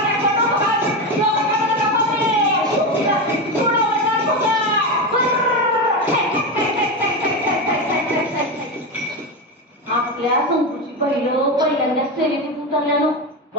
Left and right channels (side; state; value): both; normal; correlation 0.16